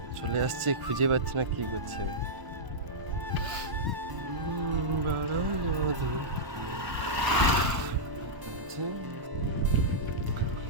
চলে আসছে, খুঁজে পাচ্ছি না কি করছে।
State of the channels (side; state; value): left; late; 1.0 ms